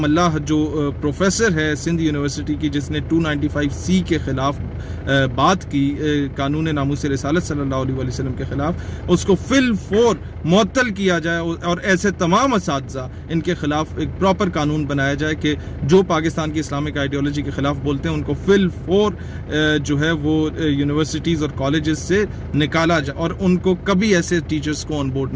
جو پروفیسر ہے سندھ یونیورسٹی کی، جس نے 295C کے خلاف بات کی قانون ناموس رسالت صلی اللہ علیہ وسلم کے خلاف، اس کو فی الفور معطل کیا جائے اور ایسے تمام اساتذہ ان کے خلاف ایک پراپر قانون بنایا جائے کہ جو پاکستان کی اسلامک آئیڈیالوجی کے خلاف بولتے ہیں ان کو فی الفور جو ہے وہ یونیورسٹیز اور کالجز سے نکالا جائے، اور ان کو کبھی ایسے ٹیچرز کو آن بورڈ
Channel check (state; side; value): identical; both; correlation 1.00